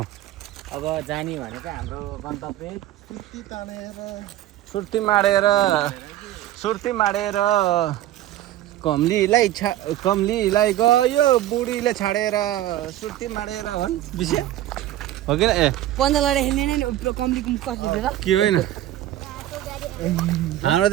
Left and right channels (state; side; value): quieter; left; 13.6 dB